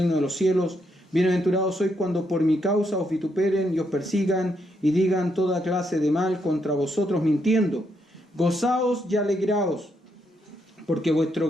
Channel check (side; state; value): both; normal; correlation 0.77